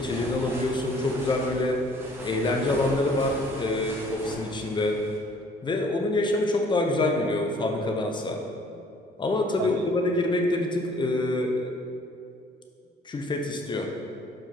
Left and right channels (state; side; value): normal; both; correlation 0.57